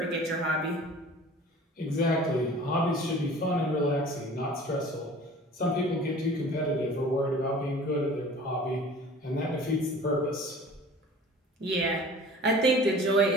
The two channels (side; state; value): both; normal; correlation 0.45